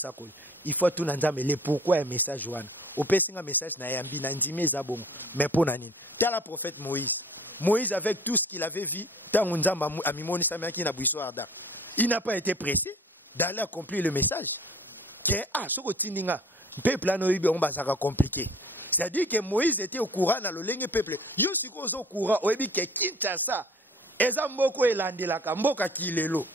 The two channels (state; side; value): normal; both; correlation 0.49